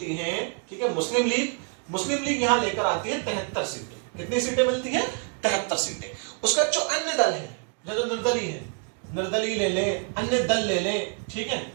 हैं, ठीक है, मुस्लिम लीग यहां लेकर आती है 73 सीटें। कितनी सीटें मिलती हैं? 73 सीटें। उसका जो अन्य दल है, जो निर्दलीय है, निर्दलीय ले ले, अन्य दल ले ले, ठीक है,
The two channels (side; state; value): left; quieter; 38.6 dB